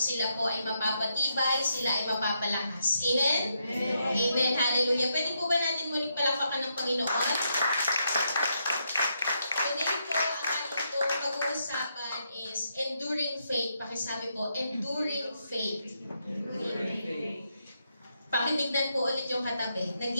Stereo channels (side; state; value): both; inverted; correlation -0.80